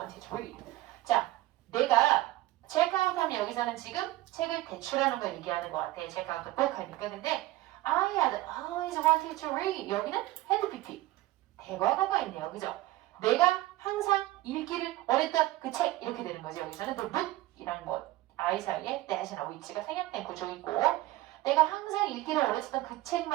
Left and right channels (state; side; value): quieter; left; 17.2 dB